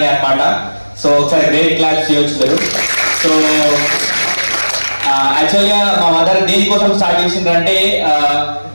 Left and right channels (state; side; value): inverted; both; correlation -1.00